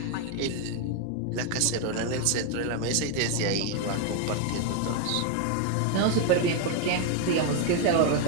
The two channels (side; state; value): both; different; correlation 0.00